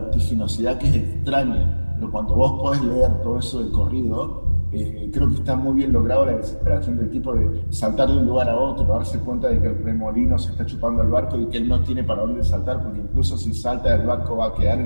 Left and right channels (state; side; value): inverted; both; correlation -1.00